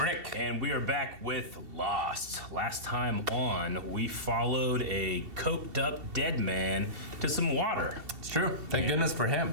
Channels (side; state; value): left; late; 2.7 ms